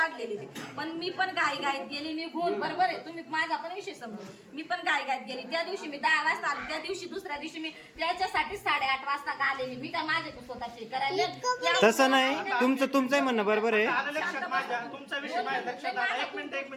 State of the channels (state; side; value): identical; both; correlation 1.00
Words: ते. पण मी पण घाईघाईत गेली निघून, बरोबर आहे. तुम्ही माझा पण विषय समजा, मी पण घाईघाईत गेली. त्या दिवशी मी 10 वाजता आले, त्या दिवशी दुसऱ्या दिवशी मी त्याच्यासाठी 8:30 वाजता आलेली. मी काय माझे स्वतःचे करायला तसं नाही, तुमचंही म्हणणं बरोबर आहे. लक्षात माझ्या तुमचा विषय माझ्या लक्षात आला. एक